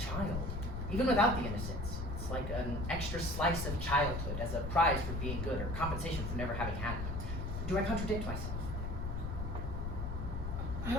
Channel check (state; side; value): noise; left; rumble, 3 dB below the sound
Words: even without the innocence. It's like an extra slice of childhood as a prize for being good or compensation for never having had it. Do I contradict myself? I